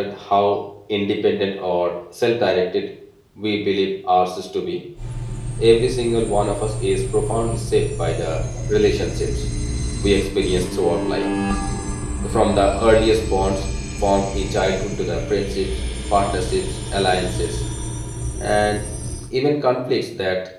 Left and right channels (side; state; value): both; identical; correlation 1.00